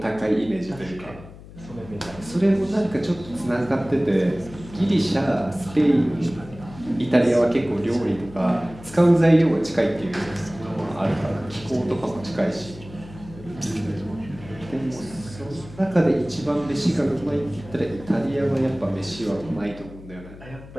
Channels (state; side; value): noise; left; hum, 17 dB below the sound